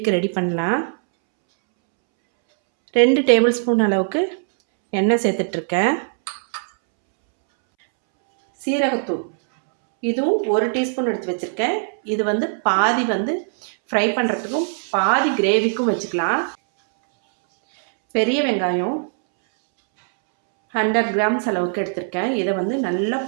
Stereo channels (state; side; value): silent; left; 66 dB below the other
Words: ரெடி பண்ணலாம். 2 டேபிள் ஸ்பூன் அளவுக்கு எண்ணெய் சேர்த்துட்ருக்கேன். சீரகத்தூள் இதுவும் 1 டீஸ்பூன் எடுத்து வச்சுருக்கேன். இது பாதி ஃப்ரை பண்ணுறதுக்கும் பாதி கிரேவிக்கும் வச்சுக்கலாம். பெரிய வெங்காயம் 100 கிராம்ஸ் அளவுக்கு எடுத்திருக்கேன். இதை நல்லா